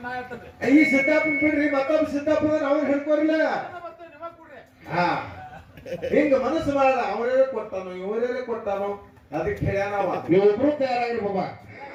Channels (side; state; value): both; identical; correlation 1.00